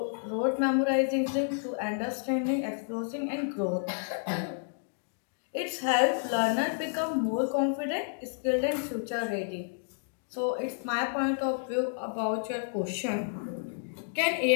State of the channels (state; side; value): silent; right; digital silence